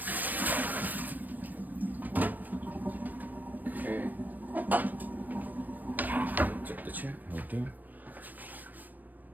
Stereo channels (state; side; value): late; left; 0.087 ms